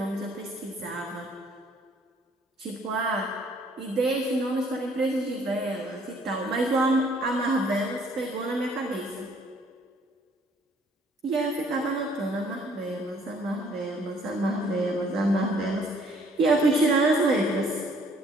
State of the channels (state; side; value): normal; both; correlation 0.61